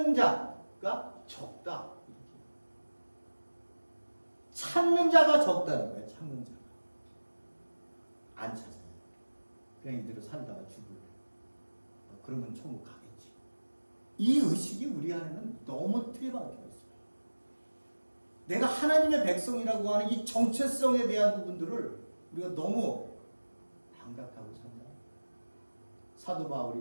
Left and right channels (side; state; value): both; inverted; correlation -1.00